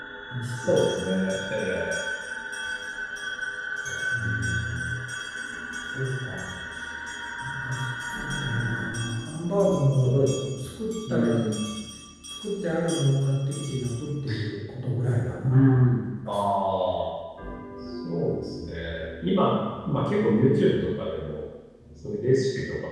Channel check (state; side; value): identical; both; correlation 1.00